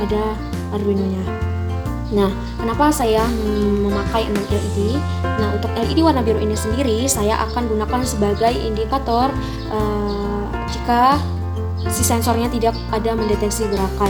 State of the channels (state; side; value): identical; both; correlation 1.00